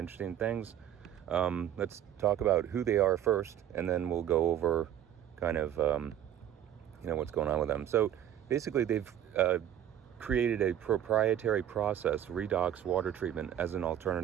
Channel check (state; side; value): quieter; left; 10.7 dB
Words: things. Let's talk about who they are first, and then we'll go over kind of what's going on with them. So basically, they've created a proprietary process, redox water treatment, as an